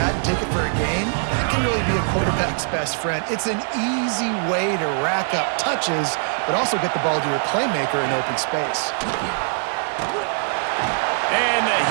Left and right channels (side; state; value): left; silent; 60 dB below the other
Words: and take it for a gain, that can really be a quarterback's best friend. It's an easy way to rack up touches, but also get the ball to your playmaker in open space. And the